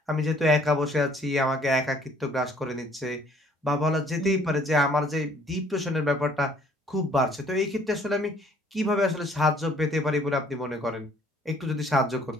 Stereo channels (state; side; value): normal; both; correlation 0.60